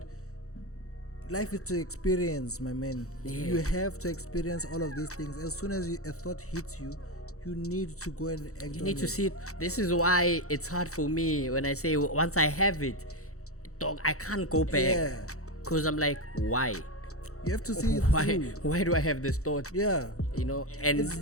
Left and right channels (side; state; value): right; late; 0.64 ms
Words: life is to experience, my man. Yeah. You have to experience all of these things. As soon as a thought hits you, you need to go and act You on need to it. see it. This is why it's hard for me when I say once I have it, dog, I can't go back. Yeah. Cause I'm like, why? You have to see it Why? through. Why do I have this thought? Yeah. You know, and It's